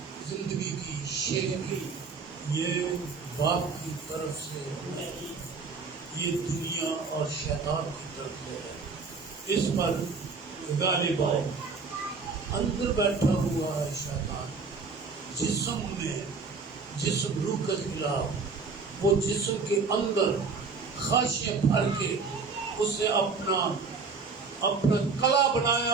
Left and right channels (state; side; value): quieter; left; 4.6 dB